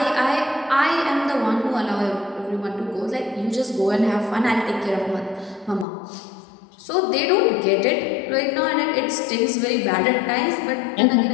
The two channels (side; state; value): right; drops out; at 5.9 s